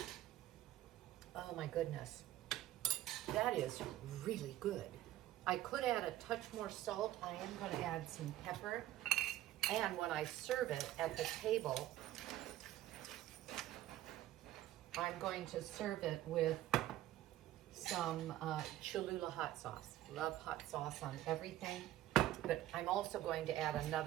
Oh my goodness. That is really good. I could add a touch more salt. I am going to add some pepper. And when I serve it at the table, I'm going to serve it with some Cholula hot sauce. Love hot sauce on everything. But I'm also going to add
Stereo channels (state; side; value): quieter; left; 14.2 dB